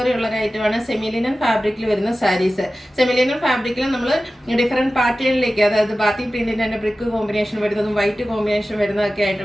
ഉള്ള ഒരു ഐറ്റമാണ് സെമിലിനൻ ഫാബ്രിക്കിൽ വരുന്ന സാരീസ്. സെമിലിനൻ ഫാബ്രിക്കിൽ നമ്മൾ ഡിഫറെന്റ് പാറ്റേണിലേക്ക്, അതായത് ബാത്തി പ്രിന്റിന്റെ തന്നെ ബ്രിക്ക് കോമ്പിനേഷൻ വരുന്നതും വൈറ്റ് കോമ്പിനേഷൻ വരുന്നതൊക്കെ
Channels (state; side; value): normal; both; correlation 0.95